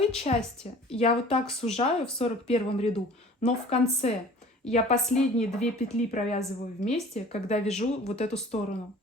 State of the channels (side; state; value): both; normal; correlation 0.47